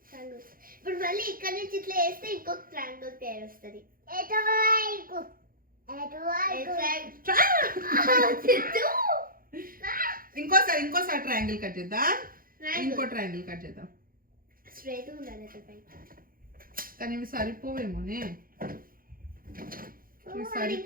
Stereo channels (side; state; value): left; late; 0.42 ms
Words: ఇప్పుడు మళ్ళీ ఇక్కడ నుంచి ఇట్లా వేస్తే ఇంకొక ట్రయాంగిల్ పేరు వస్తుంది. ఇంకోసారి ట్రయాంగిల్ కట్ చేద్దాం. ఇంకో ట్రయాంగిల్ కట్ చేద్దాం. స్ట్రైట్ ఉండాలి కానీ ఇవి సరిపోవేమోనే, ఇవి